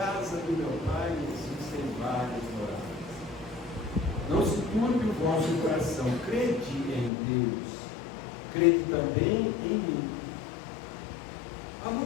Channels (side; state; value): right; drops out; at 7.1 s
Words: do meu pai existem várias moradas. Não se turbe o vosso coração, crede em Deus. Crede também em mim. Há